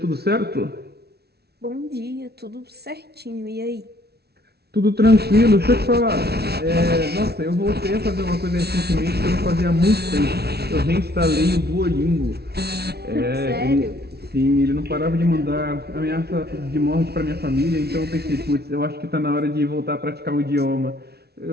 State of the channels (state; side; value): late; left; 0.47 ms